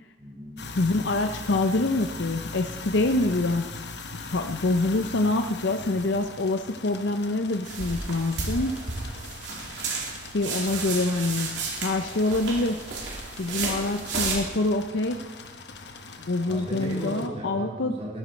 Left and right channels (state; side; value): normal; both; correlation 0.43